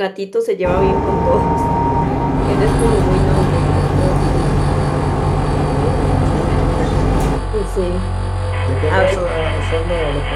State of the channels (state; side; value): identical; both; correlation 1.00